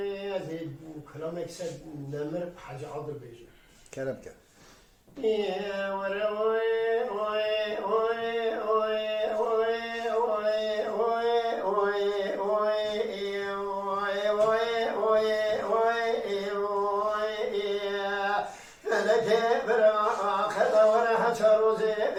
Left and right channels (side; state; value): both; identical; correlation 1.00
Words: كلام يكسب نمر حاجة عضل بيجي کرم که